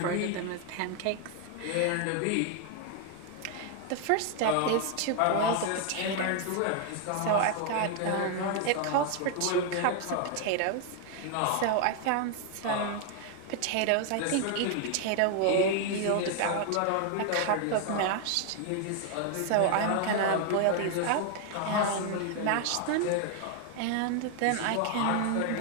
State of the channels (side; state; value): both; different; correlation 0.00